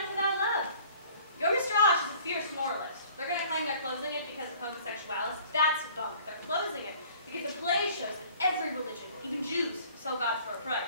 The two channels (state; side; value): inverted; both; correlation -0.53